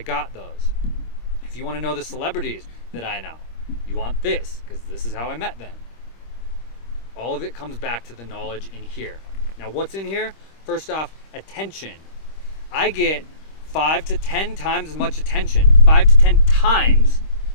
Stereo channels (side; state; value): right; late; 26 ms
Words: those. If you want to know the celebrities that I know, you want this, because this is how I met them. All of it comes back to the knowledge in here. Now, what's in here? First off, attention. I get 5 to 10 times as much attention, 5 to 10 times